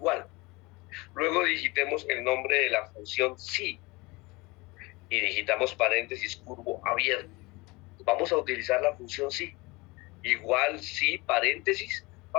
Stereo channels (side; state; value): right; quieter; 24.2 dB